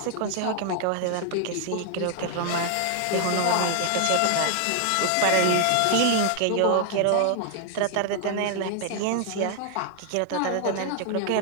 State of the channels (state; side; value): different; both; correlation 0.00